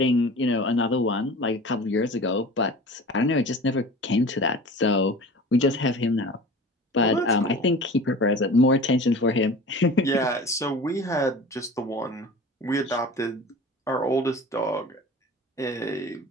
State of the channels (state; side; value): normal; both; correlation 0.39